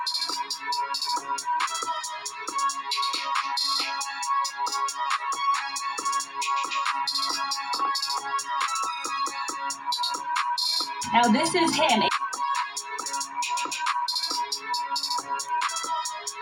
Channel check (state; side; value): identical; both; correlation 1.00